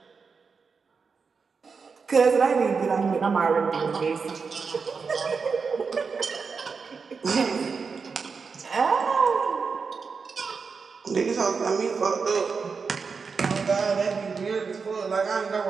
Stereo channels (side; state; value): left; quieter; 5.2 dB